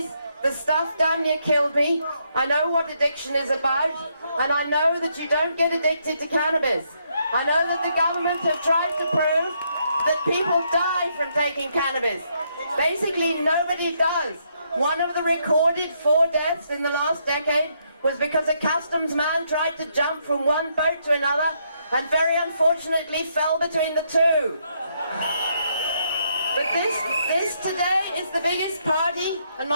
The stuff damn near killed me. I know what addiction is about, and I know that you don't get addicted to cannabis. I know that the government have tried to prove that people die from taking cannabis. Basically, nobody does. One of the recorded 4 deaths in the last decade was because a customs man tried to jump from one boat to another and very unfortunately fell between the two. But this today is the biggest party, and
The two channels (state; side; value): inverted; both; correlation -0.75